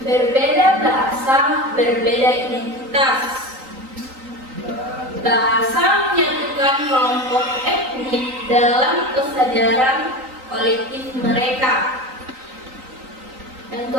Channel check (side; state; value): left; late; 3.9 ms